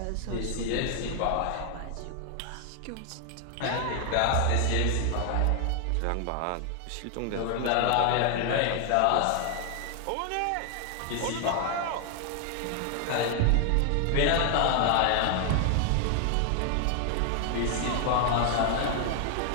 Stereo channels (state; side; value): different; both; correlation 0.00